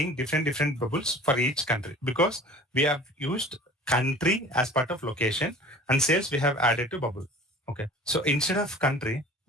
different bubbles for each country because we have used country as part of location and sales we have added to bubble. Okay. So instead of country,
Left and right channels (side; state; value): both; normal; correlation 0.43